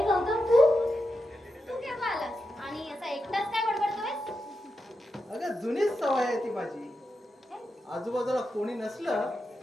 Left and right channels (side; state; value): both; normal; correlation 0.88